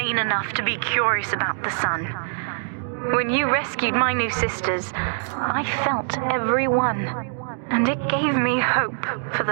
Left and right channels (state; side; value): silent; left; digital silence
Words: enough to be curious about the sun. When you rescued my new sisters, I felt every one, and it gave me hope for